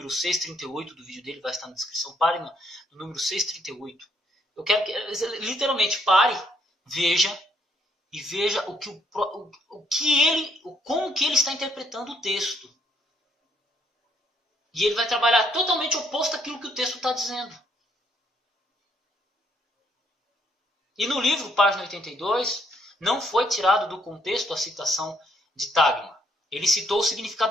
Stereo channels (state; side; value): normal; both; correlation 0.70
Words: 638 do vídeo dele, vai estar na descrição. Pare no número 638. Eu quero que, literalmente, pare, veja como que ele está interpretando o texto. E ele vai trabalhar totalmente oposto àquilo que o texto está dizendo. E no livro, página 82, não foi tirado do contexto a citação de tagma. Ele citou o